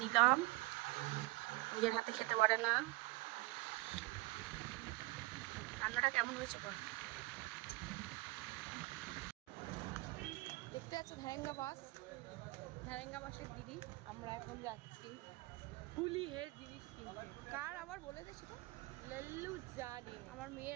দিলাম, নিজের হাতে খেতে পারে না। রান্নাটা কেমন হয়েছে বল? দেখতে পাচ্ছ ভ্যারেঙ্গা বাসের দিদি। আমরা এখন যাচ্ছি ফুলি হেড জিনিস কিনতে। কার আবার বলে দে সেটা। লল্লু জানি আমার মেয়ের,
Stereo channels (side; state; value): left; quieter; 22.7 dB